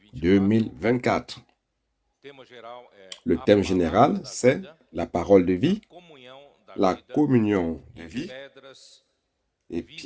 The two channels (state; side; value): identical; both; correlation 1.00